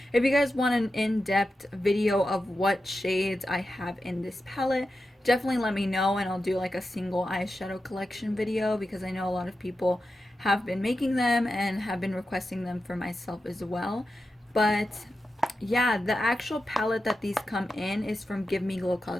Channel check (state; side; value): normal; both; correlation 0.90